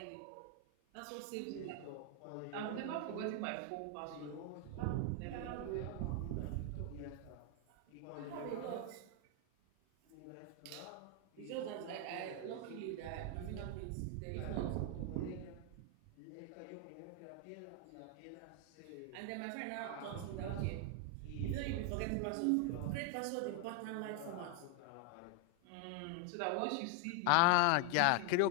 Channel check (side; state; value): both; different; correlation 0.00